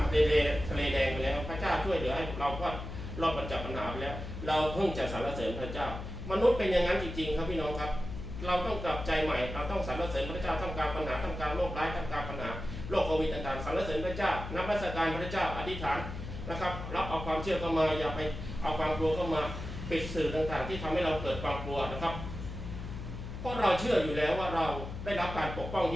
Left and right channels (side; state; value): left; noise; hum, 8 dB below the sound